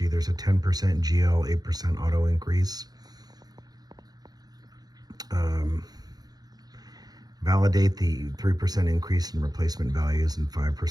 There's a 10% GL, 8% auto increase. Validate the 3% increase in replacement values and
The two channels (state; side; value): late; left; 0.19 ms